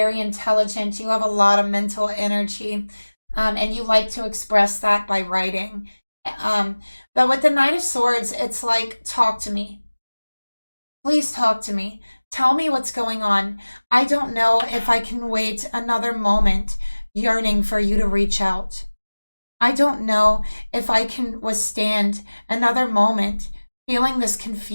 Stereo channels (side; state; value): both; inverted; correlation -1.00